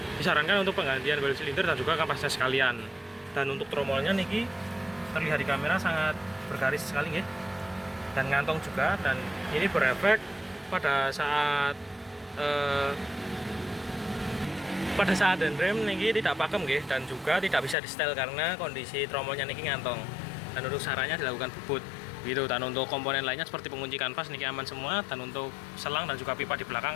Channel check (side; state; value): right; drops out; at 17.8 s